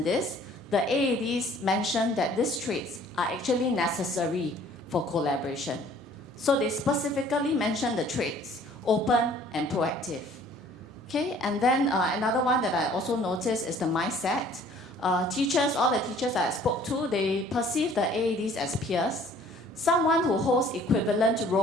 this. The AEDs mentioned that these traits are actually necessary for collaboration. So they specifically mentioned the traits, open and proactive. Okay, and then another one that I also noticed is the mindset. All the teachers I spoke to, they perceive the AEDs as peers, someone who holds equivalent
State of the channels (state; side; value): normal; both; correlation 0.54